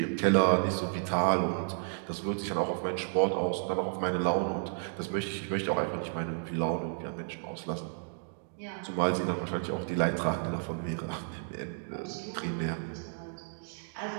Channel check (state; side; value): silent; left; digital silence